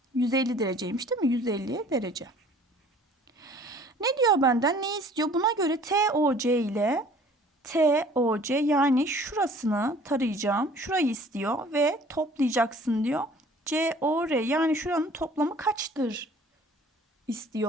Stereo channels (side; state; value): both; normal; correlation 0.52